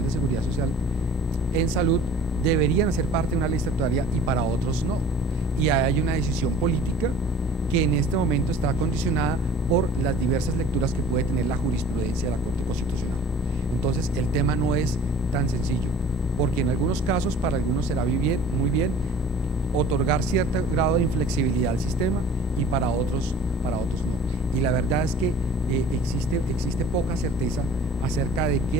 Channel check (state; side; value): normal; both; correlation 0.47